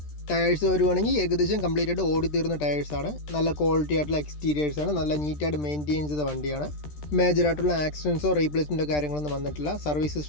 ടയേഴ്സ് വരുവാണെങ്കിൽ ഏകദേശം കംപ്ലീറ്റ് ആയിട്ട് ഓടിത്തീർന്ന ടയേഴ്സാണ്. നല്ല ക്വാളിറ്റി ആയിട്ടുള്ള എക്സ്റ്റീരിയേഴ്സാണ്. നല്ല നീറ്റായിട്ട് മെയിൻറ്റെയിൻ ചെയ്ത വണ്ടിയാണ്. മേജറായിട്ടുള്ള ആക്സിഡൻസോ റീപ്ലേസ്മെൻറ്റോ കാര്യങ്ങളൊന്നും വന്നിട്ടില്ല. സർവീസ്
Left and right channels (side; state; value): right; late; 13 ms